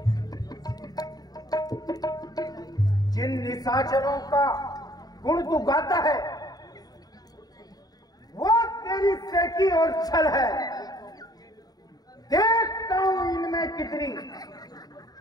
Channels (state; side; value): late; right; 0.19 ms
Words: जिन निशाचरों का गुण तू गाता है वो तेरी सेकी और छल है। देखता हूं इनमें कितनी